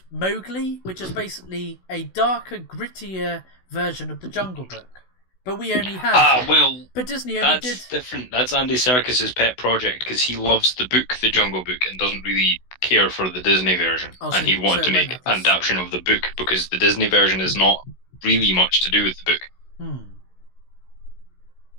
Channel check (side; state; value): right; late; 16 ms